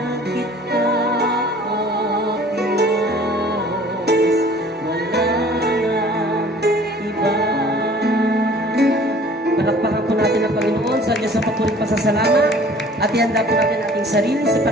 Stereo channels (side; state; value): both; normal; correlation 0.50